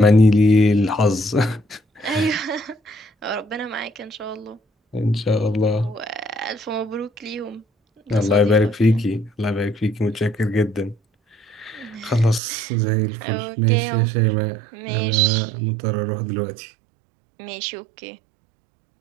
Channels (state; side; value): drops out; left; at 12.4 s